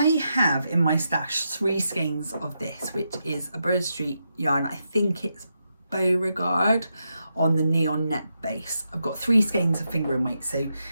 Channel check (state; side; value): inverted; both; correlation -0.84